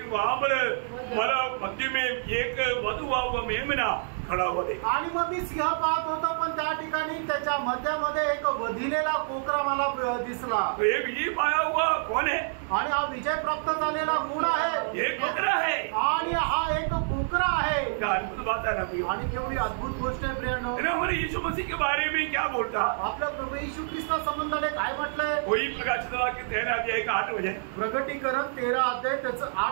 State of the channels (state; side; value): silent; left; digital silence